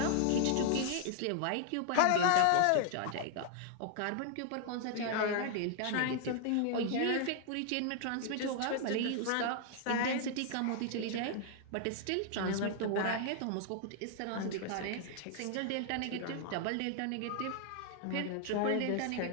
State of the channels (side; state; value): both; different; correlation 0.00